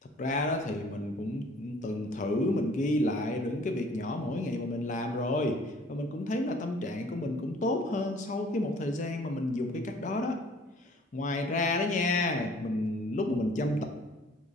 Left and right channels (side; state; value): both; normal; correlation 0.54